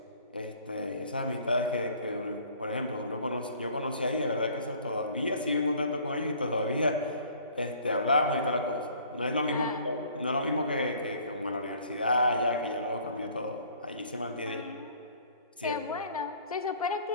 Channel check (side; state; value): both; inverted; correlation -0.54